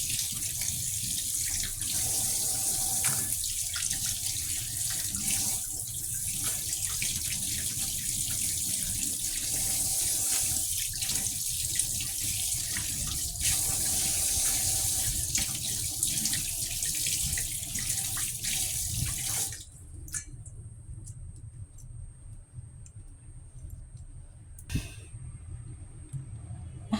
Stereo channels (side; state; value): both; identical; correlation 1.00